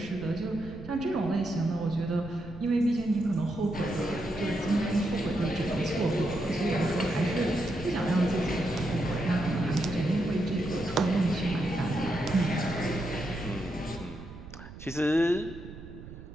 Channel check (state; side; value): noise; right; rumble, 14 dB below the sound